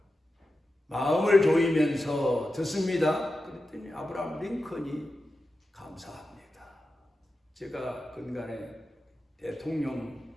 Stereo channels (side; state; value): both; normal; correlation 0.92